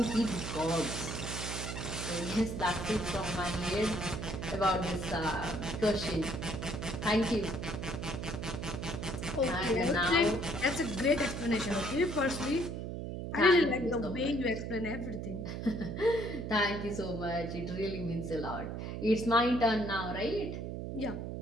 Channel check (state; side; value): noise; right; hum, 5 dB below the sound